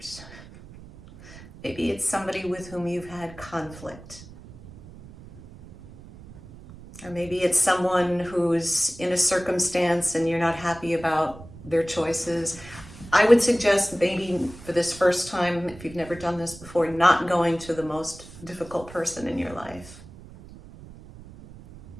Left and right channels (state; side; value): noise; right; rumble, 18 dB below the sound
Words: Maybe it's somebody with whom you've had conflict. Or maybe it's someone who's in a circumstance and you're not happy about their choices. I would suggest maybe for this first time, if you've never done this before, not going to the most difficult person in your life.